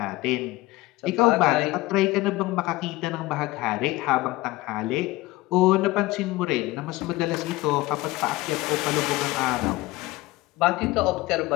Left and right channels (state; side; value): quieter; right; 18.9 dB